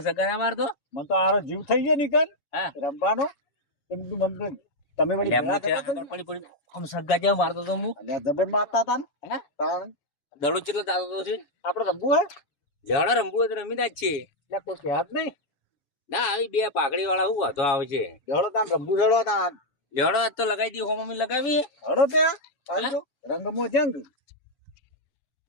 સગા ના મારતો. મને તો આરો જીવ થઈ ગયો નીકળ હા રમવાનો એ બધું મન તો તમે વળી એટલે હું ભેગા ત્યાં થતા આગળ પડી પડી આમ સગા જેવા મારતો તો હું. એટલે જબર મારતા હતા ને હે તાણ દડો ચેટલો દાતો તો છે. આપણે રમવું હે લેવડા રમવું હોય તો રમી ના જ છે. એટલે કોઈ કહેત નહીં ના આવી બે પાઘડી વાળા શું વાંધો આવે છે. જડો તાન રમવું જડો તાન લેવડો આજ તો લગાવી દી હોમ લગાવી હડો તે આવજો રંગમો જંગ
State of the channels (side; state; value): right; late; 7.1 ms